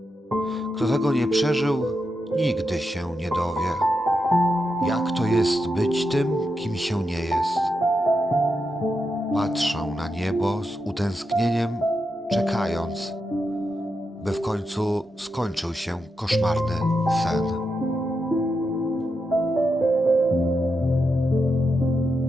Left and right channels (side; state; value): both; normal; correlation 0.86